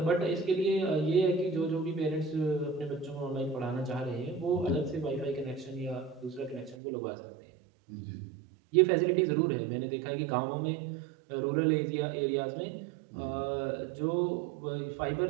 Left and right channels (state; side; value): drops out; left; at 6.8 s